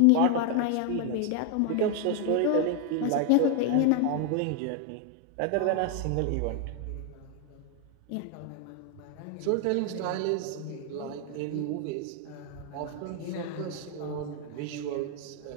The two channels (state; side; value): different; both; correlation 0.01